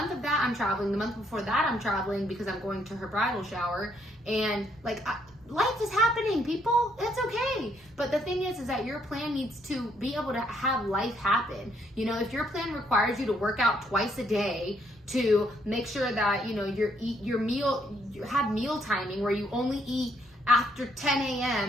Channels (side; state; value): both; normal; correlation 0.71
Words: that I'm traveling. The month before that I'm traveling because I'm going to her bridal shower, and like, life is happening, people. That's okay. But the thing is that your plan needs to be able to have life happen. You know, if your plan requires you to work out twice a day to make sure that, you know, you have meal timing where you only eat after 10